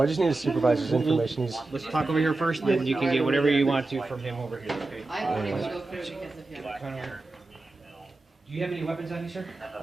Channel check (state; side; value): quieter; left; 3.2 dB